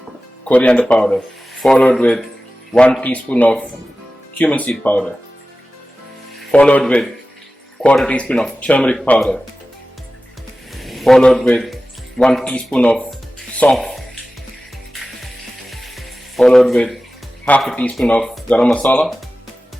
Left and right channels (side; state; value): both; normal; correlation 0.95